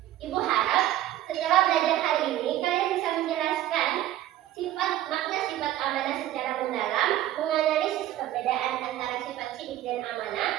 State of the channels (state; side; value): quieter; left; 13.5 dB